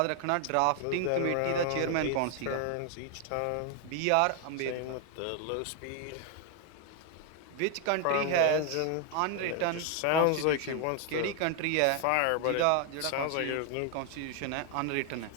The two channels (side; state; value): both; different; correlation 0.00